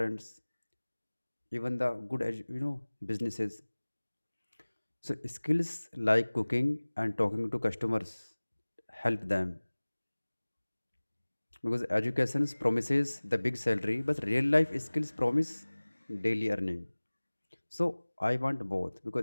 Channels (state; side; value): inverted; both; correlation -1.00